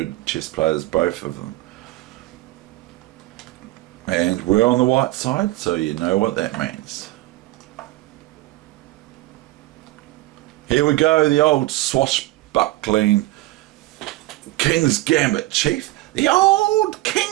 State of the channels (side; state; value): left; quieter; 18.1 dB